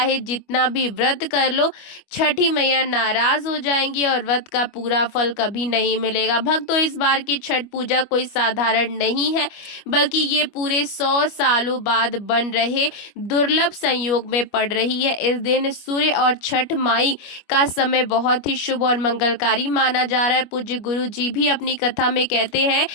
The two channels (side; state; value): right; late; 25 ms